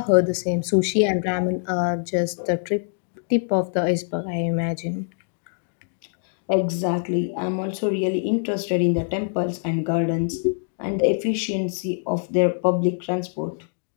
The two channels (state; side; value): silent; right; digital silence